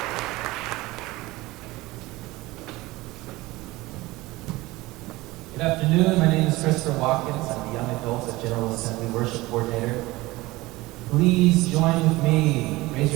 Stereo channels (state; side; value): quieter; left; 20.0 dB